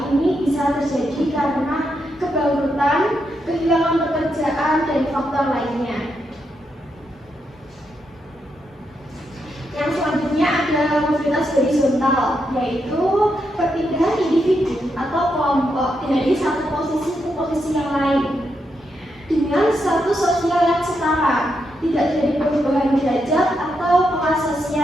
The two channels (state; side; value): normal; both; correlation 0.82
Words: Ini bisa terjadi karena kebangkrutan, kehilangan pekerjaan, dan faktor lainnya. Yang selanjutnya ada mobilitas horizontal, yaitu perpindahan individu atau kelompok dari satu posisi ke posisi yang lain dengan status sosial yang setara, tidak terjadi perubahan derajat atau kelas